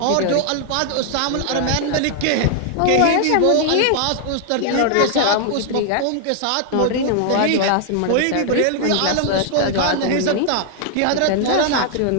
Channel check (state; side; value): different; both; correlation 0.00